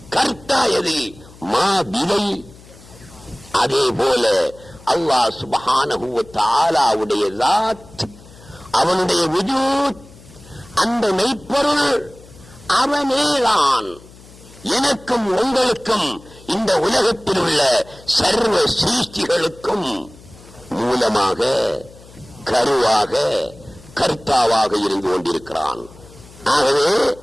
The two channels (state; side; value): noise; left; hum, 22 dB below the sound